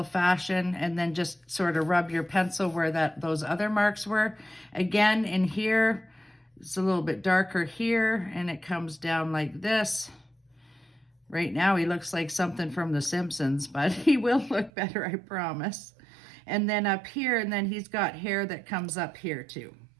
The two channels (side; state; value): left; drops out; at 14.7 s